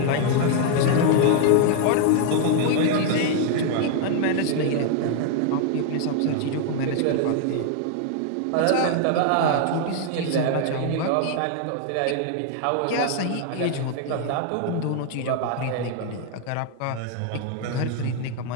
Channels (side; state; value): both; different; correlation 0.00